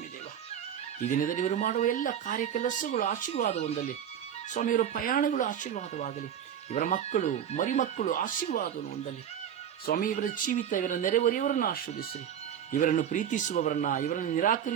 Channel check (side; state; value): left; quieter; 9.2 dB